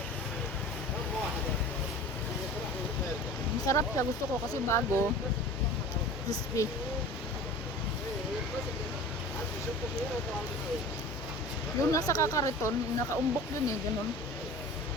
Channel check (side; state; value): both; normal; correlation 0.39